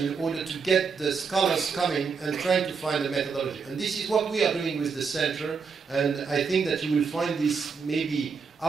in order to get the scholars coming and trying to find a methodology. And this is what we are doing with the center, and I think that you will find this maybe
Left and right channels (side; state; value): left; quieter; 5.5 dB